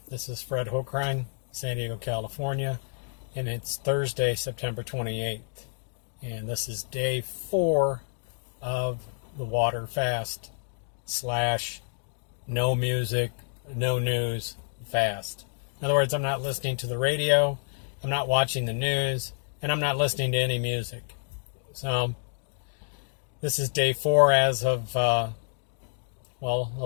This is Fred Hochrein, San Diego, California, and it's Thursday, September 28th. And this is day 4 of the water fast slash no music, no news fast. In other words, I'm not listening to the radio, I'm not watching the news, and I'm not listening to any music. So this is day 4 as of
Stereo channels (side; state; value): right; silent; digital silence